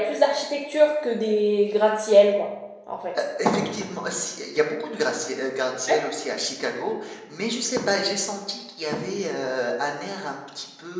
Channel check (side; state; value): both; identical; correlation 1.00